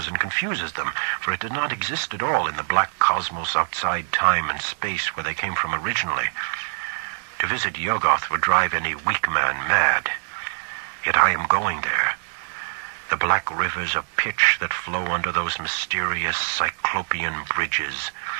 and confuses them, for it did not exist at all in the black cosmos outside time and space where they came from originally. To visit Yuggoth would drive any weak man mad. Yet I am going there. The black rivers of pitch that flow under those mysterious cyclopean bridges,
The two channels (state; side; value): silent; left; digital silence